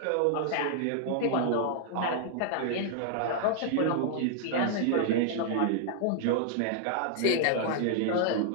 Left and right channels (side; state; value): both; different; correlation -0.01